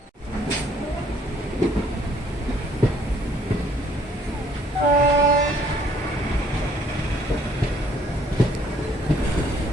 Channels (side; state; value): both; normal; correlation 0.62